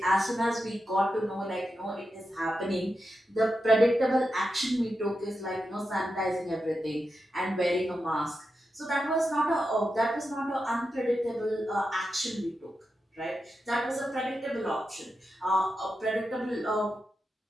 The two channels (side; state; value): both; normal; correlation 0.88